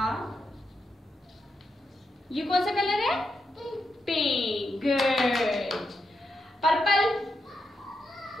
ये कौन सा कलर है? Pink, good. Purple,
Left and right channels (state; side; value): normal; both; correlation 0.85